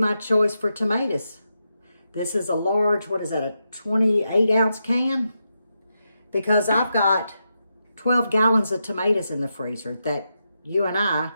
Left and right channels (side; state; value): both; inverted; correlation -0.86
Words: choice for tomatoes. This is a large, what is that, a 28-ounce can? Because I've got 12 gallons of tomatoes in the freezer that you and I